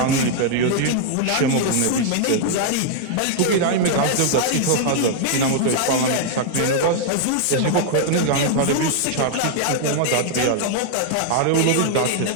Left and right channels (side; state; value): both; different; correlation 0.00